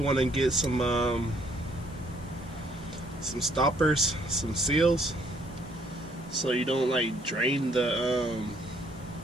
to get some stoppers, some seals, so you don't like drain the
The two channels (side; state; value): both; normal; correlation 0.65